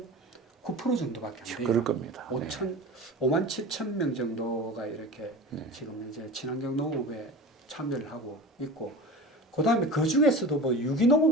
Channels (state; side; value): normal; both; correlation 0.32